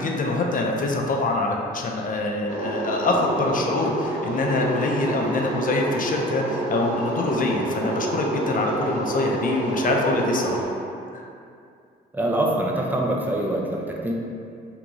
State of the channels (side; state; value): both; normal; correlation 0.41